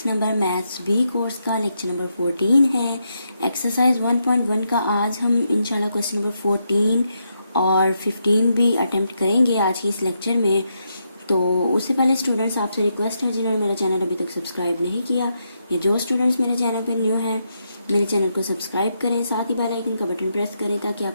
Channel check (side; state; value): both; inverted; correlation -0.81